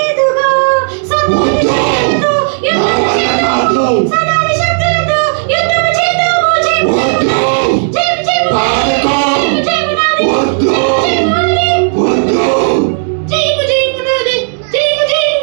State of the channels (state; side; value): silent; left; digital silence